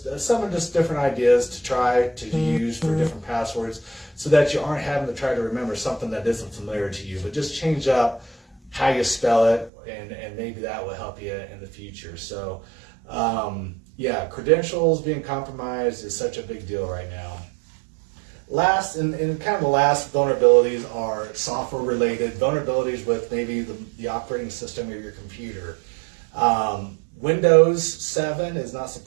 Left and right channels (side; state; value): left; drops out; at 9.7 s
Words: different ideas to try to use for different passwords, so that you aren't having to try to remember something that isn't familiar to you, but just change up how you spell it, and maybe that will help you in the future. So credentials being compromised is such a big deal right now. Last, and kind of the last vulnerabilities are software related vulnerabilities with maybe the operating system of your computer. Windows 7 is not